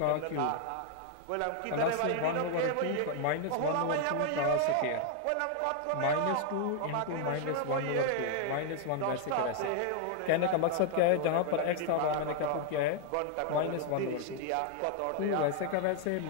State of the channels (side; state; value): both; different; correlation 0.00